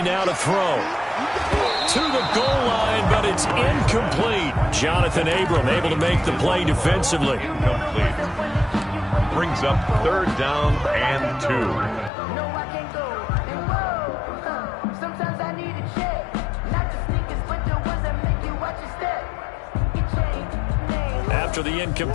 now to throw. To the goal line, but it's incomplete. Jonathan Abram able to make the play defensively. Complete. Brings up 3rd down and 2. No, I can't go. And whoa, sometimes I need a check. Not the sneakers, but the ones that make you watch your step. Your chain, name. After the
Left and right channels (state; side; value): drops out; right; at 12.1 s